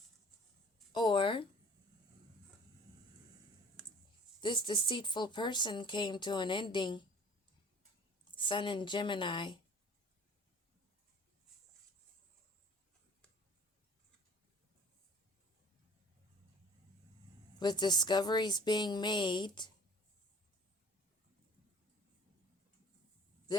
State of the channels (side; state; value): both; normal; correlation 0.48